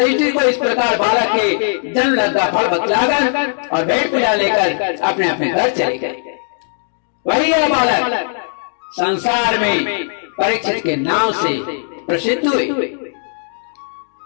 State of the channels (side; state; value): right; silent; digital silence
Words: को इस प्रकार बालक के जन्म लब्ध फल बतलाकर और भेंट पूजा लेकर अपने अपने घर चले गए। वही यह बालक संसार में परीक्षित के नाम से प्रसिद्ध हुए,